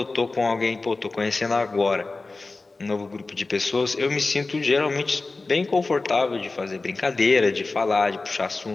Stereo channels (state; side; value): quieter; right; 3.5 dB